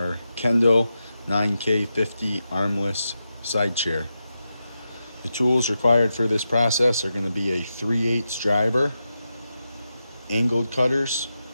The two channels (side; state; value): both; inverted; correlation -0.89